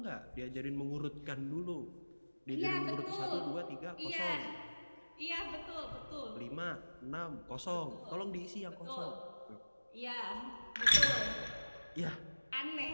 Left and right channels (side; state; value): both; inverted; correlation -1.00